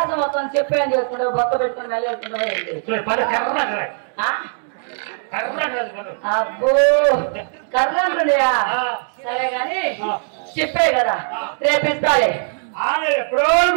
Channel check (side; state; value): left; silent; 66 dB below the other